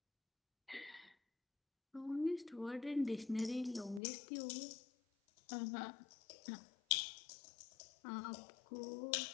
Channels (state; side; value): drops out; right; at 4.0 s